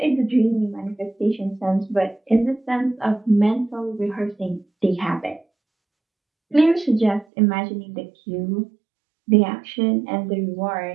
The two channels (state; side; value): drops out; left; at 7.2 s